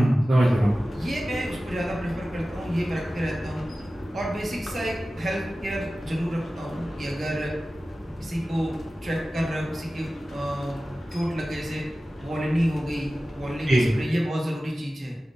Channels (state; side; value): normal; both; correlation 0.95